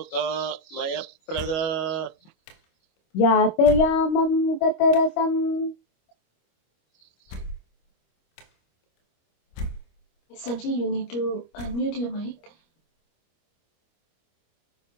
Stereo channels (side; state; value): right; late; 25 ms